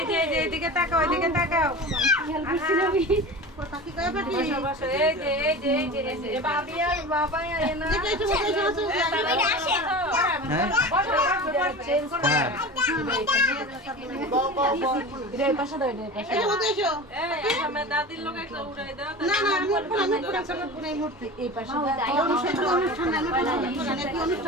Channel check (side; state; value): both; normal; correlation 0.32